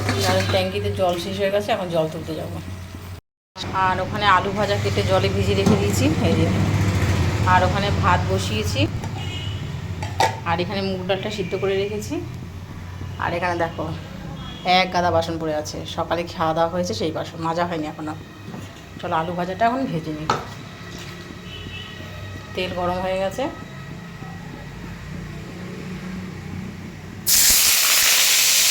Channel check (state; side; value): identical; both; correlation 1.00